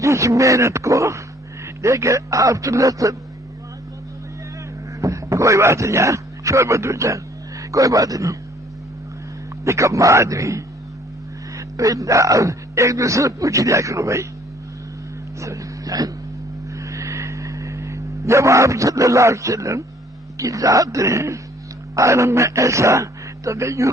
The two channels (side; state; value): both; normal; correlation 0.59